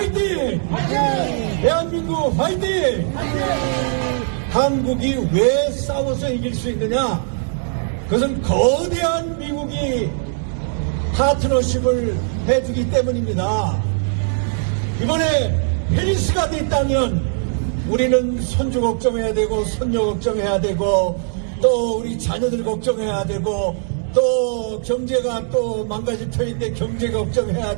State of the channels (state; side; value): silent; left; digital silence